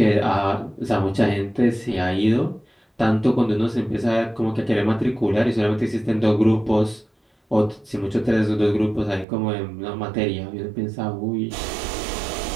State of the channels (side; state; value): left; drops out; at 9.2 s